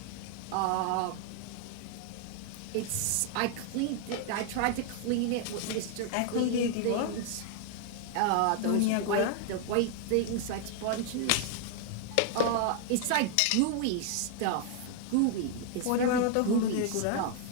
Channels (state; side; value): different; both; correlation 0.00